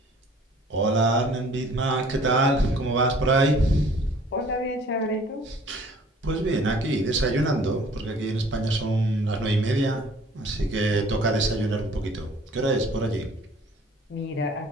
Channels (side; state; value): both; normal; correlation 0.53